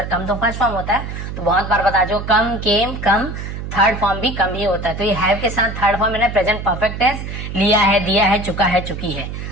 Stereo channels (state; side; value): noise; right; hum, 7 dB below the sound